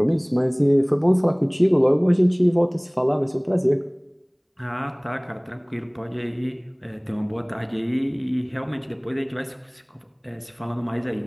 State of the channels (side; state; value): both; identical; correlation 1.00